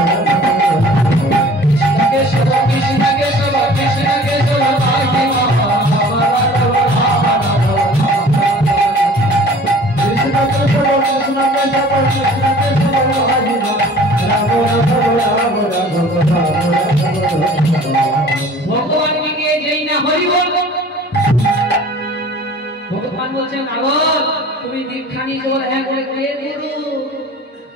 ভগবান কে যেই না হরি বল ভগবান বলছেন নারদ তুমি দীক্ষা নিয়ে বলে হ্যাঁ বলে কে গুরু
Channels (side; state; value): both; normal; correlation 0.46